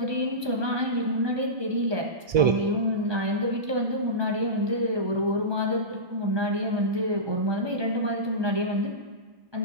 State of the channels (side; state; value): left; late; 1.2 ms